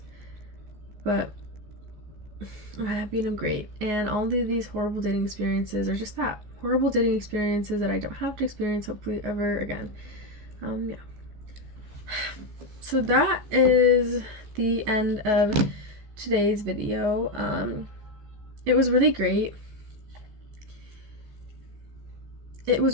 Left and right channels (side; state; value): left; late; 14 ms